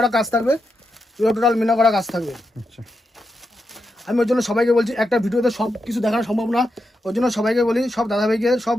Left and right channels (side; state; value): both; normal; correlation 0.86